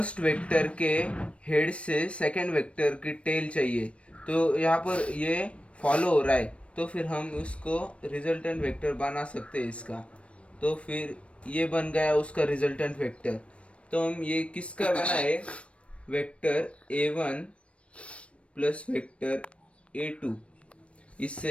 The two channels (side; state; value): right; late; 0.061 ms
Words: वेक्टर के हेड से सेकंड वेक्टर की टेल चाहिए। तो यहाँ पर ये फॉलो हो रहा है, तो फिर हम उसको रिजल्टेंट वेक्टर बना सकते हैं इसका। तो फिर ये बन गया उसका रिजल्टेंट वेक्टर। तो हम ये किसका बना है, vector A1 plus vector A2,